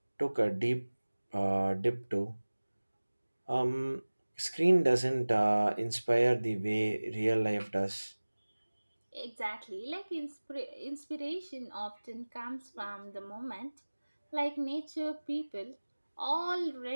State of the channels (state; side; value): inverted; both; correlation -1.00